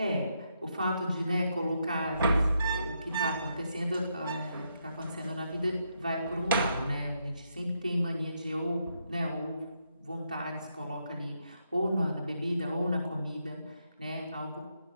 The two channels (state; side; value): inverted; both; correlation -0.79